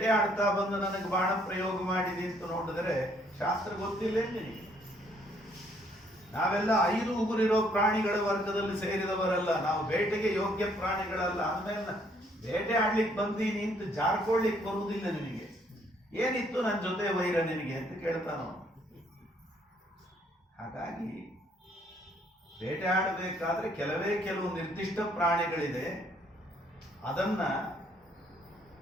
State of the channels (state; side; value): normal; both; correlation 0.66